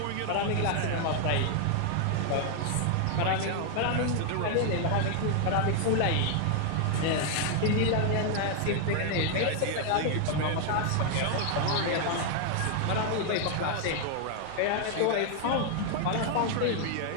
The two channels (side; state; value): both; different; correlation 0.00